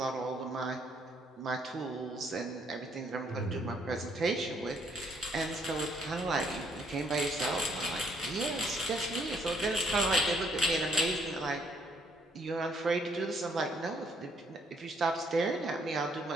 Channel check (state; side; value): normal; both; correlation 0.68